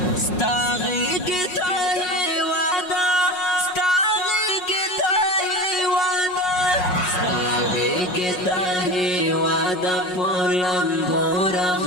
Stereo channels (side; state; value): right; late; 5.5 ms